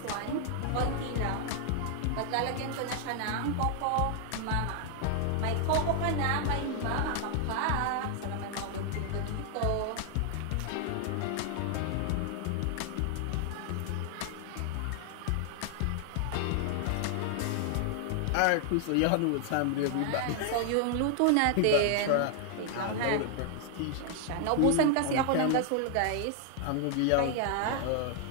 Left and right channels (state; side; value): different; both; correlation 0.00